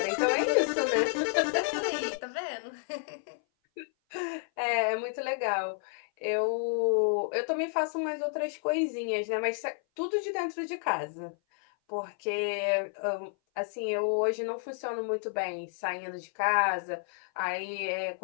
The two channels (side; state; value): right; silent; 56 dB below the other